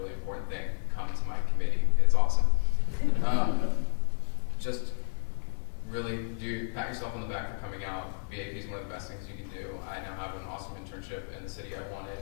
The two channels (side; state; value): right; silent; 57 dB below the other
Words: important thing. Come to my committee. It's awesome. Just really pat yourself on the back for coming out. BAP is one of the best things you can do. I now have an awesome internship in the city I wanted,